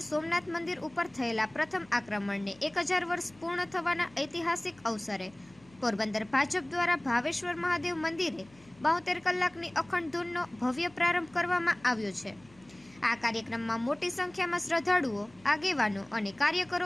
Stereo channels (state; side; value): noise; left; hum, 27 dB below the sound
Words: સોમનાથ મંદિર ઉપર થયેલા પ્રથમ આક્રમણને 1000 વર્ષ પૂર્ણ થવાના ઐતિહાસિક અવસરે પોરબંદર ભાજપ દ્વારા ભાવેશ્વર મહાદેવ મંદિરે 72 કલાકની અખંડ ધૂનનો ભવ્ય પ્રારંભ કરવામાં આવ્યો છે. આ કાર્યક્રમમાં મોટી સંખ્યામાં શ્રદ્ધાળુઓ, આગેવાનો અને